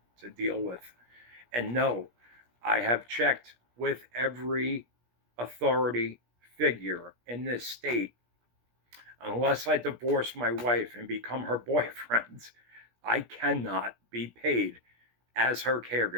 to deal with. And no, I have checked with every authority figure in this state. Unless I divorce my wife and become her boyfriend, I cannot be paid as her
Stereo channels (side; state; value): left; late; 17 ms